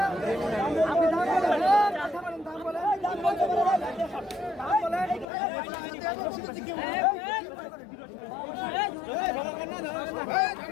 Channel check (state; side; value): drops out; right; at 5.2 s